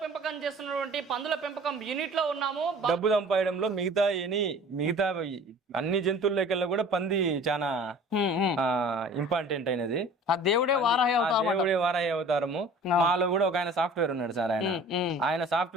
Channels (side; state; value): both; normal; correlation 0.45